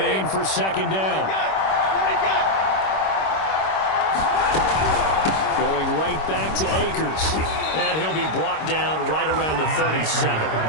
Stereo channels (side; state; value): right; late; 26 ms